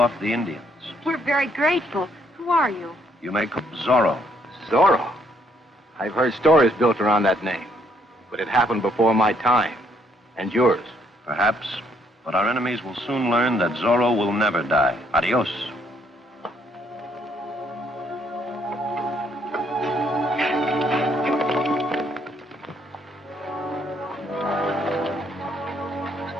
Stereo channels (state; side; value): normal; both; correlation 0.70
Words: the Indians. We're very grateful. Who are you? You may call Zorro. Zorro? I've heard stories built around that name, but it happened before my time. And yours. Perhaps, but our enemies will soon learn that Zorro will never die. Adios.